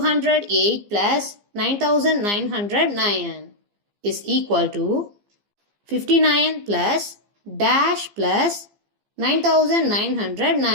plus 9909 is equal to 59 plus dash plus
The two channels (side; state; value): left; late; 15 ms